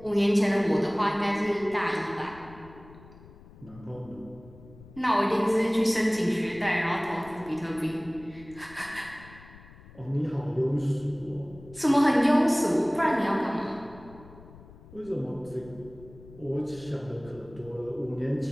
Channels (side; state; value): left; noise; rumble, 21 dB below the sound